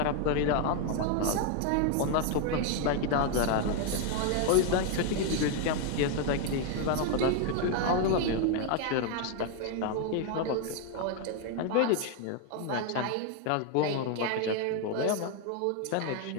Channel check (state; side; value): different; both; correlation 0.01